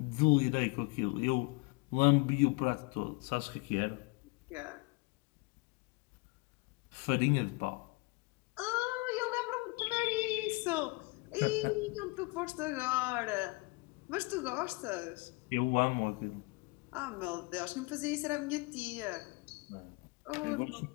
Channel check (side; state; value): right; quieter; 26.6 dB